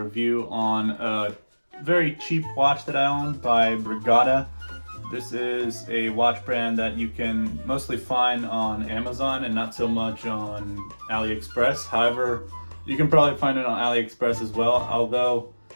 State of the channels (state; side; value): inverted; both; correlation -1.00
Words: on a very cheap watch that I own by Brigada. This is a watch brand that you can mostly find on Amazon and not so much on AliExpress. However, you can probably find it on AliExpress as well, although